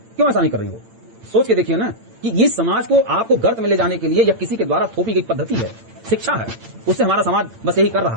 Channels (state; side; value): late; left; 8.9 ms